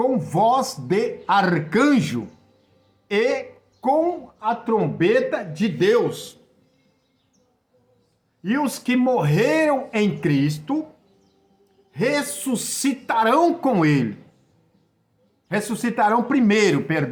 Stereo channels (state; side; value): identical; both; correlation 1.00